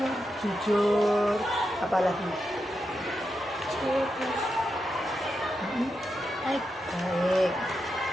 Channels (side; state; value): both; normal; correlation 0.86